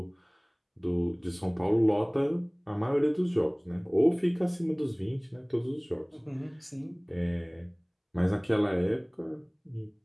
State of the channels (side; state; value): both; identical; correlation 1.00